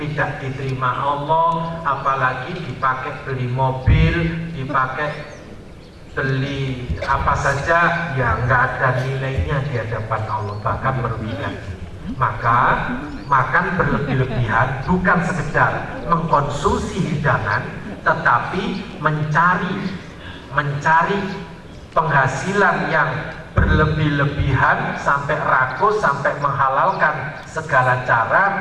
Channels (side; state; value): both; identical; correlation 1.00